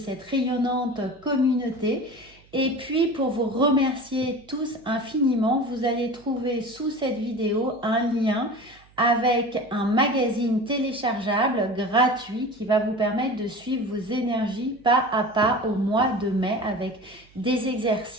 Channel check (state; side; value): noise; right; hum, 28 dB below the sound